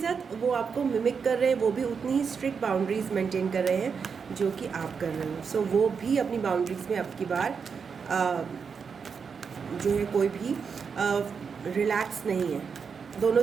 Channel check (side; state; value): left; quieter; 6.0 dB